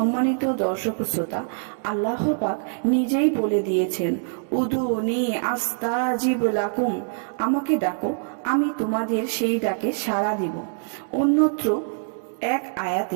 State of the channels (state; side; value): silent; left; digital silence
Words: দর্শক শ্রোতা, আল্লাহ পাক নিজেই বলে দিয়েছেন, উদুনি আস্তাজিব লাকুম, আমাকে ডাকো, আমি তোমাদের সেই ডাকে সাড়া দিব। অন্যত্র এক